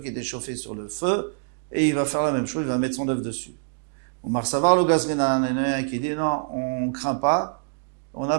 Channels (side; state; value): left; silent; digital silence